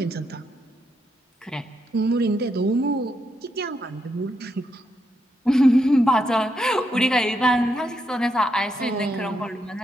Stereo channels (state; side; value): normal; both; correlation 0.81